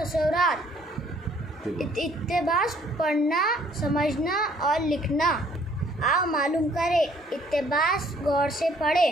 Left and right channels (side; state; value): both; normal; correlation 0.61